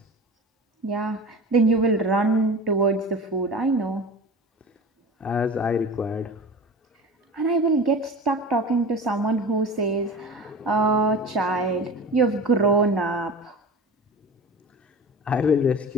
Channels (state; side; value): normal; both; correlation 0.34